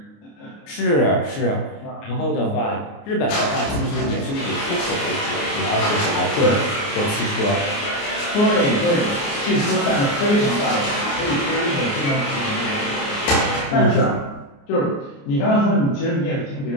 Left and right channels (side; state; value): right; late; 29 ms